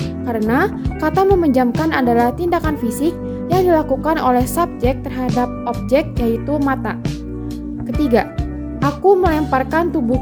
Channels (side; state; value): both; identical; correlation 1.00